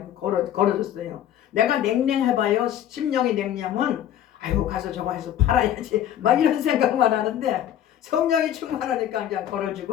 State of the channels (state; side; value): quieter; right; 10.9 dB